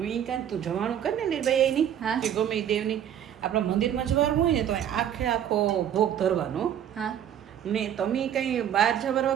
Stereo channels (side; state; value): left; quieter; 9.9 dB